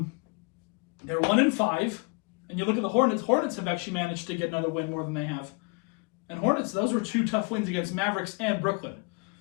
1-5, and you look at the Hornets. Hornets have actually managed to get another win more than they have. And Hornets, those were 2 tough wins against Mavericks and Brooklyn.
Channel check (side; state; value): right; quieter; 31.3 dB